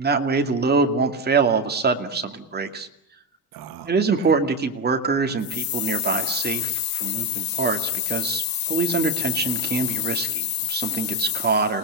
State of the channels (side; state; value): both; normal; correlation 0.12